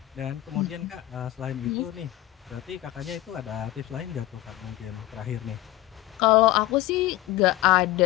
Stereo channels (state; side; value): quieter; right; 16.2 dB